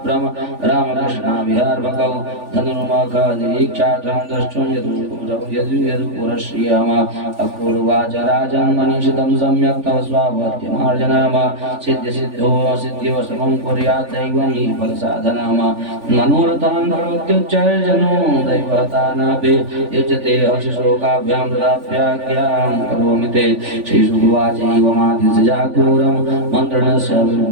रामकृष्णाविहार्भकौ धनुर्मुखनिरीक्षार्थं द्रष्टुं यदुपुरश्रियम अक्रूरवाच राजन् मनीषितं सम्यक् तव स्वावत्यमार्जनम सिद्ध्यसिद्धो सिद्ध्यो समं कुर्यात् दैवं हि फलसाधनम मनोरथान् भवत्युच्चैर्जनो दैवतानापि युज्यते हर्षशोकाभ्यां तदाप्याज्ञां करोमि ते श्रीशुभवाचैवमादिशजा क्रूरं मन्त्रणस्य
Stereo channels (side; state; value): left; late; 3.4 ms